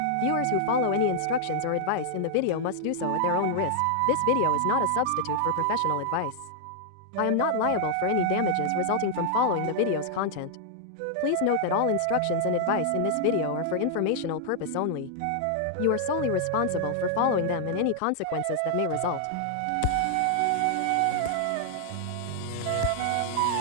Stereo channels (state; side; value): different; both; correlation 0.00